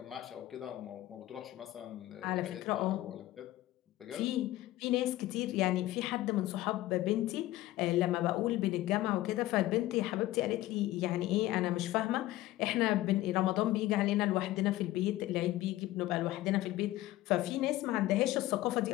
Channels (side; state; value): right; quieter; 16.1 dB